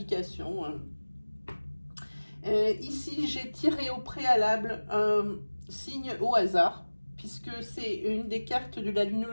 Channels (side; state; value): both; inverted; correlation -1.00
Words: hein. Ici, j'ai tiré au préalable un signe au hasard, puisque c'est une des cartes de la